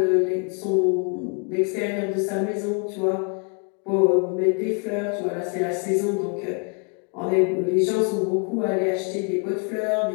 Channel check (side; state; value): right; quieter; 37.0 dB